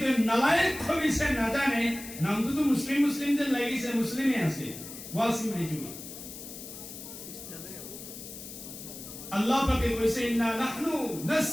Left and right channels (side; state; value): left; noise; hiss, 12 dB below the sound